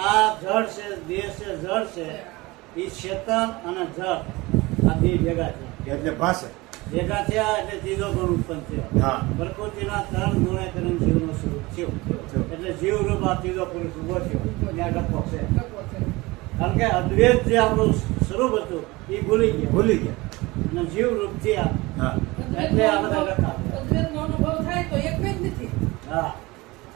આ જળ છે દેહ છે જળ છે એ ચેતન અને જળ આ બે ભેગા છે એટલે ભાષે ભેગા થયા એટલે ત્રીજો ગુણ ઉત્પન્ન થયો હા. પ્રકૃતિના 3 ગુણે કરીને જીવનું સ્વરૂપ થયું એટલે જીવ રૂપ આ ત્રીજો પુરુષ ઉભો થયો ત્યાં ડખો છે ડખો છે કારણ કે અદ્વૈત જે આપણું સ્વરૂપ હતું એ ભૂલી ગયા ભૂલી ગયા અને જીવ રૂપ થયા હા એટલે આ બધા ડખા થયા. અદ્વૈતનો અનુભવ થાય તો એક જ નથી હા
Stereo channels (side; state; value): left; quieter; 22.0 dB